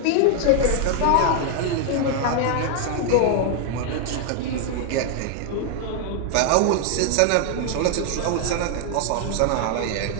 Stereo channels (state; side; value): different; both; correlation 0.00